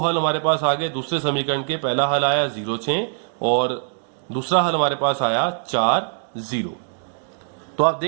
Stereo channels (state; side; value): silent; left; digital silence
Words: हमारे पास आ गए दूसरे समीकरण के, पहला हल आया 0 6 और दूसरा हल हमारे पास आया 4 0। तो आप